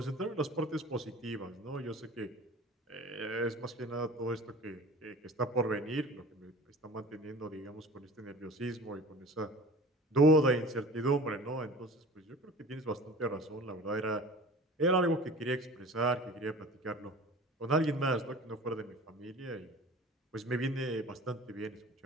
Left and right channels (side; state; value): both; normal; correlation 0.41